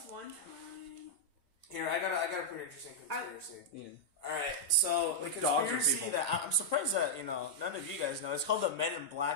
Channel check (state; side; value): late; left; 1.8 ms